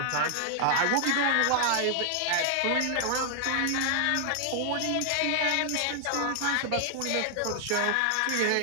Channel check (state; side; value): different; both; correlation 0.00